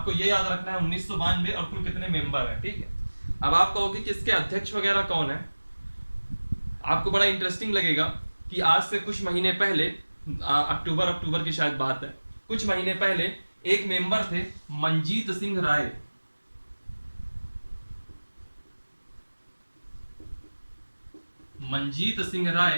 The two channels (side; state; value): both; inverted; correlation -1.00